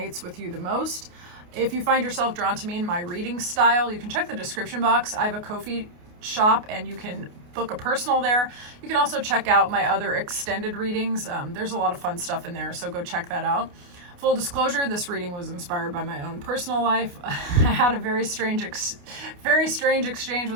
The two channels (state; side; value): late; left; 28 ms